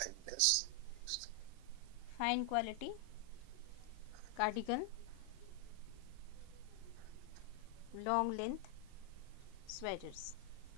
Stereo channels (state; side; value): different; both; correlation 0.00